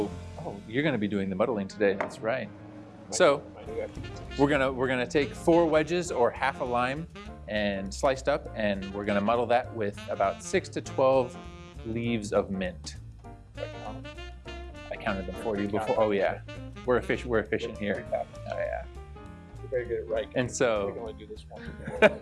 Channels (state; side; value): identical; both; correlation 1.00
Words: you're gonna be doing the muddling today. That's right. So we're gonna take 4 wedges or half a lime and sliced up, and we're gonna muddle that with about 6 to 12 leaves of mint. I counted them for you before. Oh yeah, we're efficient here. Oh yeah. Very good at right. And so, we can only do this